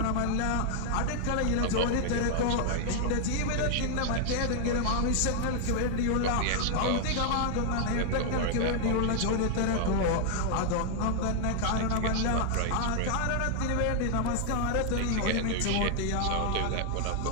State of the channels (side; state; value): both; different; correlation 0.00